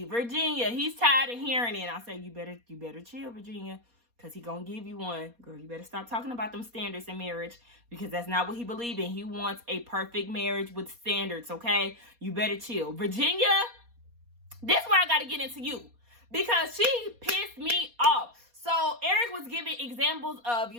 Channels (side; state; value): left; late; 4.2 ms